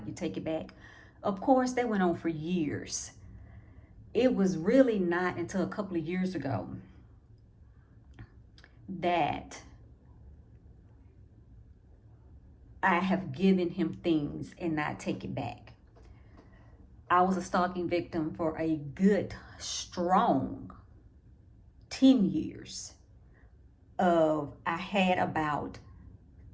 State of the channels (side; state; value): both; identical; correlation 1.00